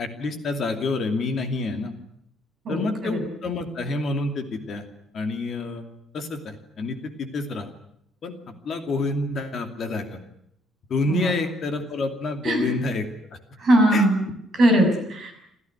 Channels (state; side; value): normal; both; correlation 0.68